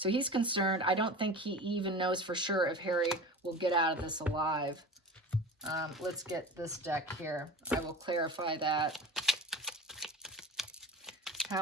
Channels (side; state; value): both; normal; correlation 0.34